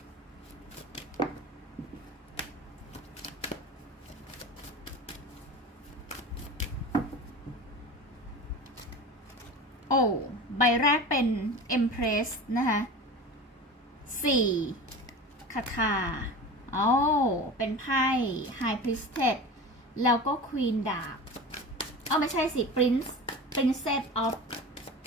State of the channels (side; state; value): both; normal; correlation 0.32